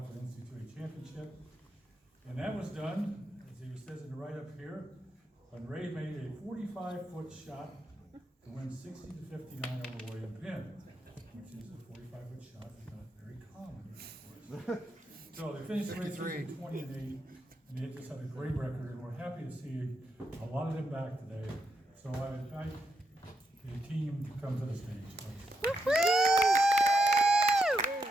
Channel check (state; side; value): normal; both; correlation 0.81